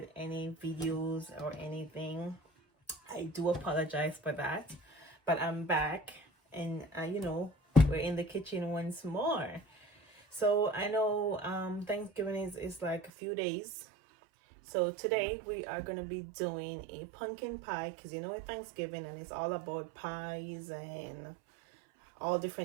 any videos or anything. I do apologize for that, but I'm back and we're in the kitchen once more. So I know Thanksgiving is like a few days. So today we are going to be doing a pumpkin pie because it's Thanksgiving and it's all about pies and all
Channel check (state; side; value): drops out; left; at 13.1 s